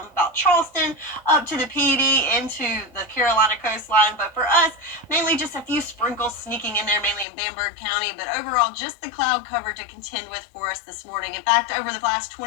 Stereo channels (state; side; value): drops out; right; at 7.2 s